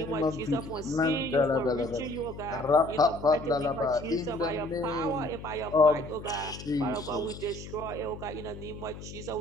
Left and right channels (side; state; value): left; noise; hum, 12 dB below the sound